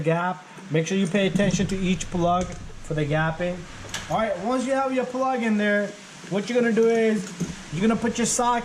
Make sure you pay attention to each plug for the gapping. Alright, once you have your plug in there, what you're gonna do is you're gonna put your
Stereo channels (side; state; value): both; identical; correlation 1.00